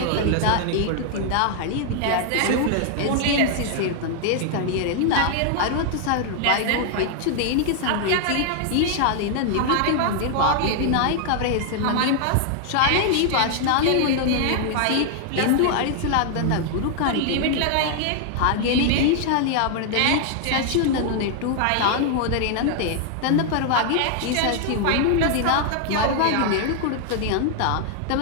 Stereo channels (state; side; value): different; both; correlation 0.00